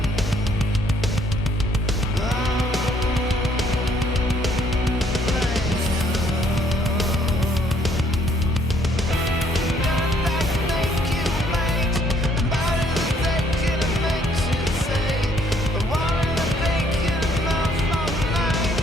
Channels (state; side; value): normal; both; correlation 0.65